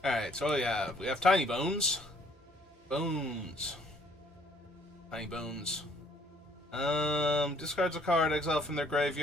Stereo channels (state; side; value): normal; both; correlation 0.62